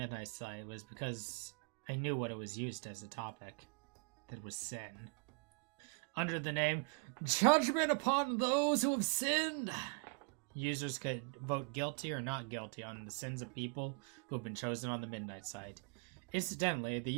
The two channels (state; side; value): quieter; left; 34.8 dB